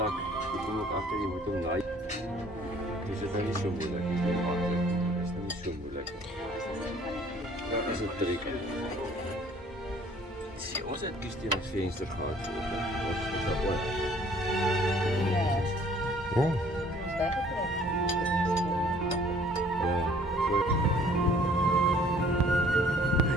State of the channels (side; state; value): both; normal; correlation 0.56